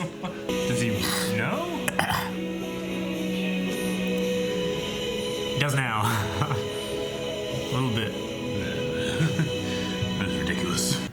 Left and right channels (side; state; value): both; identical; correlation 1.00